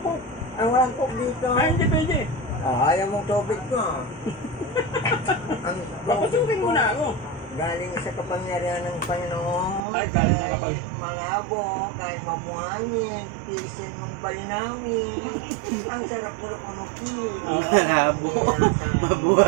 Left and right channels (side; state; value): left; drops out; at 9.8 s